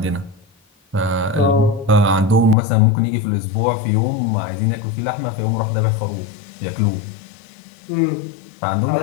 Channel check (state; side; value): drops out; right; at 2.6 s